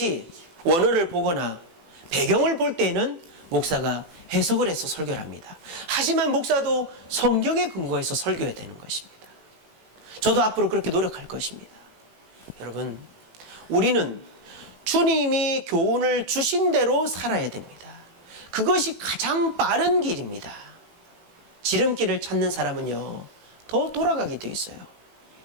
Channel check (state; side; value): late; left; 18 ms